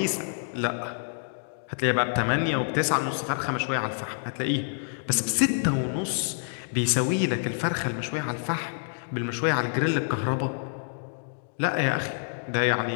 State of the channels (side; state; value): right; silent; digital silence